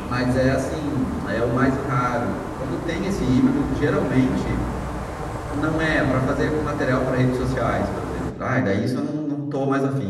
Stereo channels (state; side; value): identical; both; correlation 1.00